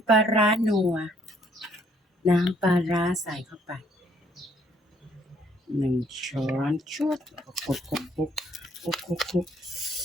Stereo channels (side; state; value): both; normal; correlation 0.65